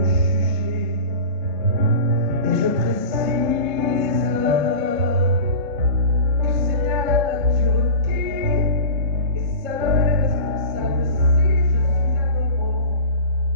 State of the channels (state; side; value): late; left; 3.8 ms